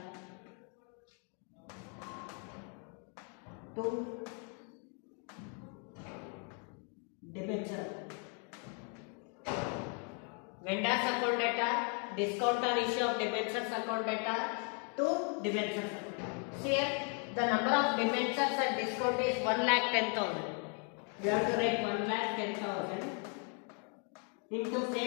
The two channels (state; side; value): quieter; right; 39.8 dB